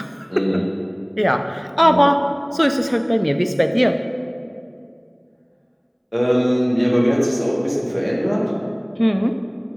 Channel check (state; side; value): identical; both; correlation 1.00